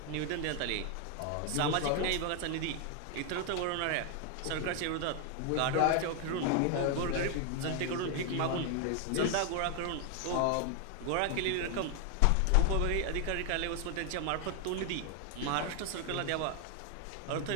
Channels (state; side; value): different; both; correlation 0.01